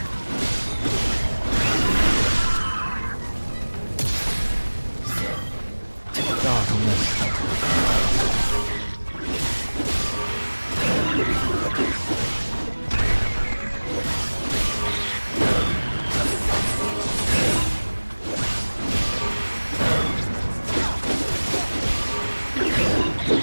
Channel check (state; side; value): inverted; both; correlation -1.00